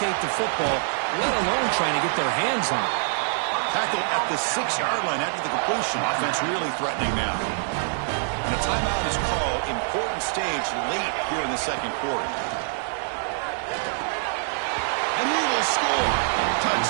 the football, let alone trying to get their hands on it. Tackle at the 6-yard line after the completion. Offense really threatening now. And a timeout is called. Important stage late here in the second quarter. And he will score.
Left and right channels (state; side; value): silent; left; digital silence